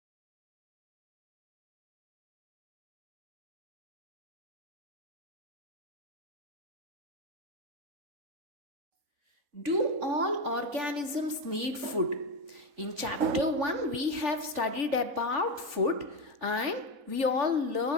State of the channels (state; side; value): late; left; 3.4 ms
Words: Do all organisms need food? In chapter 1, we have studied about food and we all